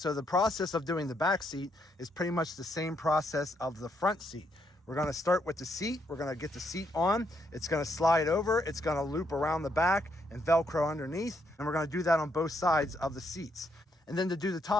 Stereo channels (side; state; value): both; normal; correlation 0.75